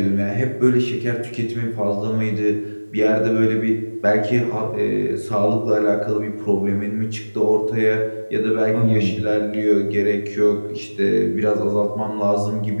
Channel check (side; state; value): both; inverted; correlation -1.00